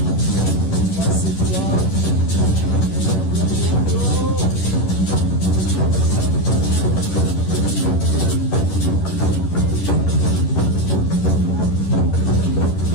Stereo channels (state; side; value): late; right; 11 ms